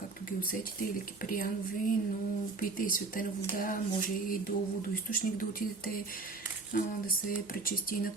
ги усетите, или киприянови, но пийте и светена вода, може и до водоизточник да отидете, да се пречисти на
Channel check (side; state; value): left; quieter; 3.8 dB